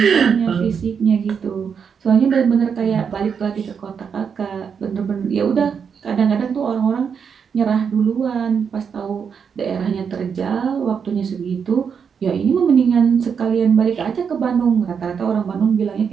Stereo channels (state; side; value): quieter; left; 6.7 dB